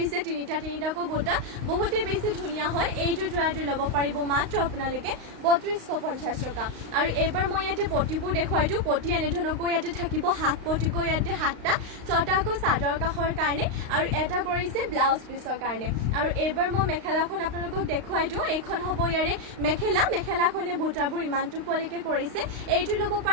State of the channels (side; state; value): left; late; 35 ms